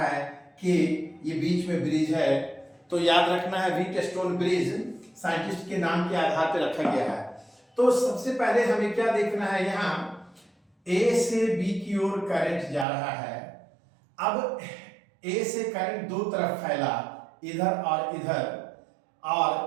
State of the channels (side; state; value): left; drops out; at 12.9 s